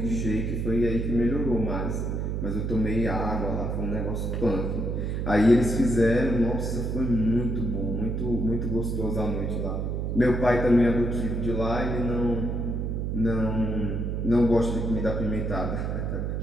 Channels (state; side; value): noise; right; hum, 1 dB below the sound